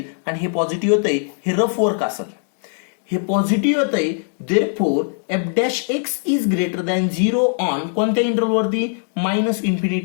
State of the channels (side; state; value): right; silent; digital silence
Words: आणि हे पॉझिटिव्ह येतंय. हे रफ वर्क असेल, हे पॉझिटिव्ह येतंय. Therefore f'(x) is greater than 0 on कोणत्या इंटरव्हलवरती?